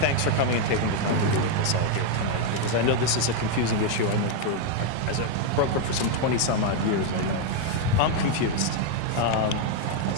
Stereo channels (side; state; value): both; different; correlation 0.01